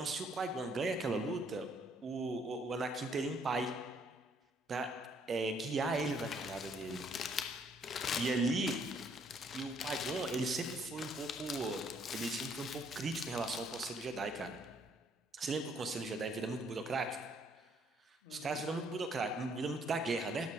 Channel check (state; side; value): normal; both; correlation 0.66